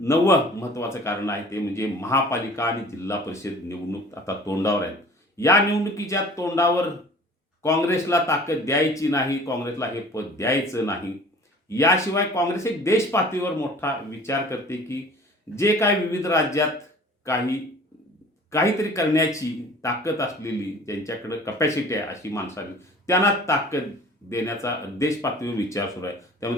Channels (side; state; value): both; normal; correlation 0.46